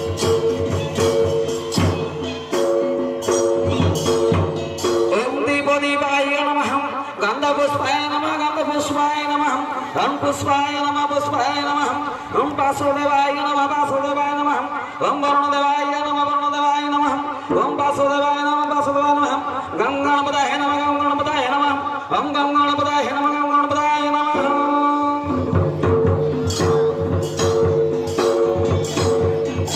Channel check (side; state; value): both; identical; correlation 1.00